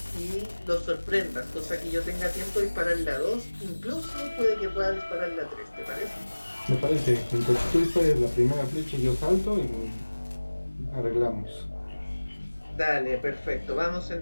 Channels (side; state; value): both; inverted; correlation -1.00